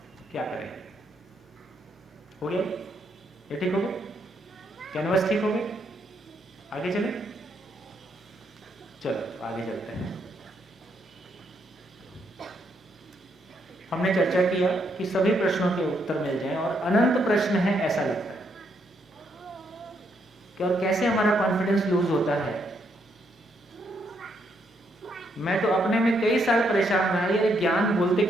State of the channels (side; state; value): both; normal; correlation 0.75